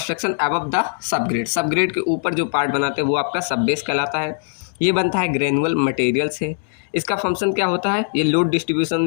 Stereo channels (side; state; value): right; silent; digital silence